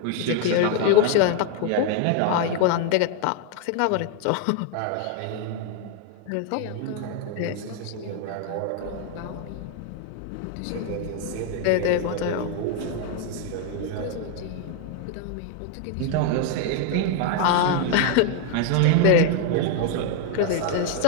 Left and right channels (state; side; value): different; both; correlation 0.01